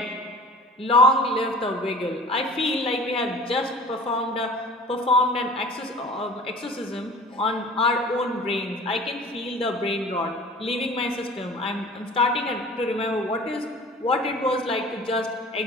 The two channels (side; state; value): both; normal; correlation 0.43